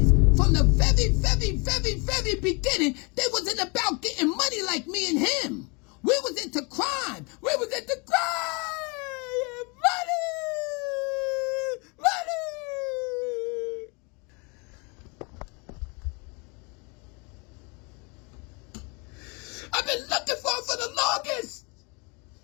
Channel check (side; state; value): right; quieter; 30.9 dB